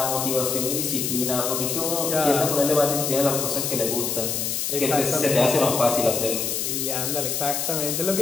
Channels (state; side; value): noise; left; hiss, 1 dB below the sound